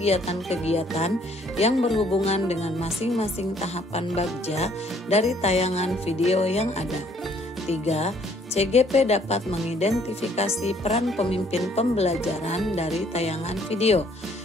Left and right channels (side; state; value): both; normal; correlation 0.63